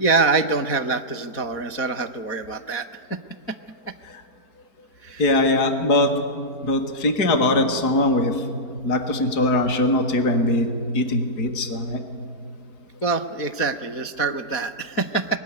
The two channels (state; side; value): late; right; 4.2 ms